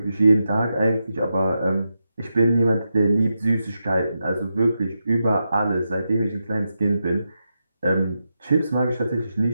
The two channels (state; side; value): inverted; both; correlation -0.87